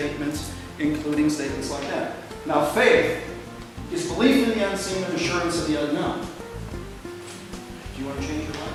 including statements like that. Now, faith is belief in the unseen and assurance of the unknown. Do you want to change your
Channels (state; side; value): identical; both; correlation 1.00